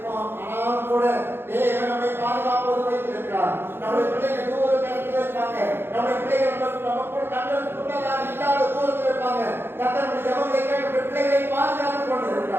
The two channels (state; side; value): late; left; 0.11 ms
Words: ஆனாலும் கூட தேவன் நம்மை பாதுகாப்போடு வைத்திருக்கிறார். நம்முடைய பிள்ளைகள் தூர இடத்துல இருப்பாங்க. நம்முடைய பிள்ளைகள் நம்ம கூட கண்களுக்கு முன்னதாக இல்லாத தூரத்தில் இருப்பாங்க. கர்த்தருடைய ஜெபங்களை கேட்டு பிள்ளைகளை பாதுகாத்துக்